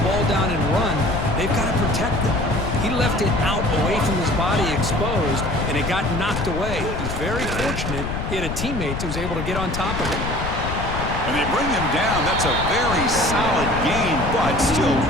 ball down and run, they've got to protect it. He left it out away from his body exposed, and it got knocked away. He's very fortunate he had a teammate who was able to get on top of it. And they bring him down. That's a very solid gain, but still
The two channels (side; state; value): left; noise; rumble, 5 dB below the sound